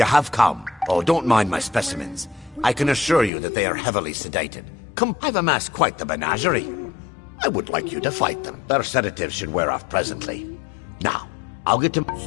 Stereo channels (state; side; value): drops out; right; at 3.3 s